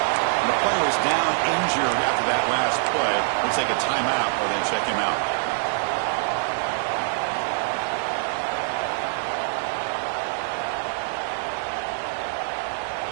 the player is down injured after that last play. We'll take a timeout or then check him out.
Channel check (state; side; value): silent; left; digital silence